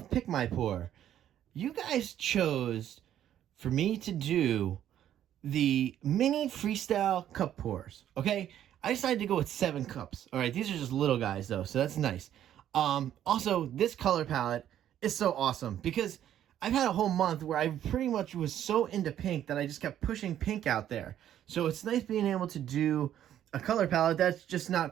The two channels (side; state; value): left; quieter; 11.0 dB